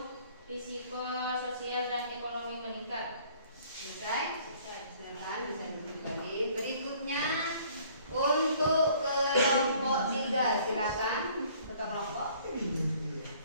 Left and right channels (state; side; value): inverted; both; correlation -0.57